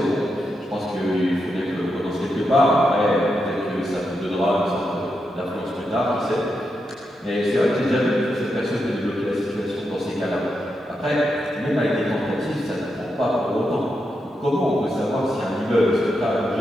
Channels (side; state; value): both; normal; correlation 0.85